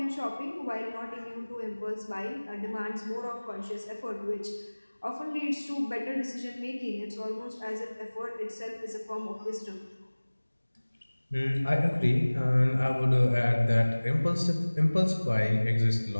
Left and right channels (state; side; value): inverted; both; correlation -1.00